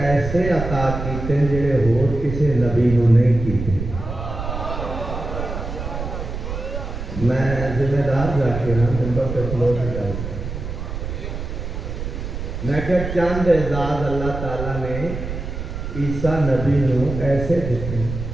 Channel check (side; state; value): right; noise; rumble, 6 dB below the sound